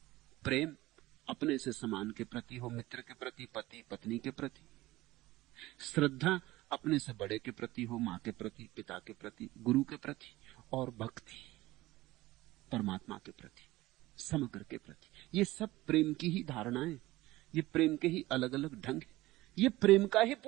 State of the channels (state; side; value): quieter; left; 18.2 dB